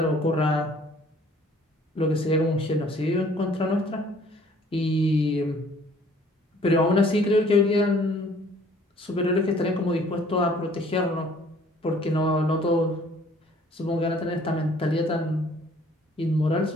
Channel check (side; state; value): both; normal; correlation 0.57